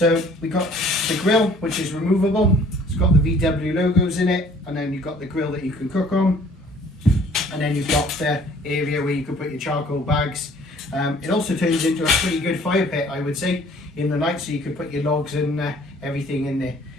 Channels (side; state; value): both; normal; correlation 0.55